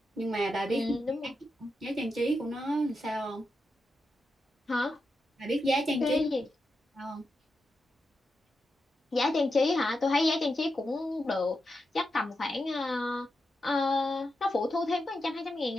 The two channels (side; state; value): both; normal; correlation 0.87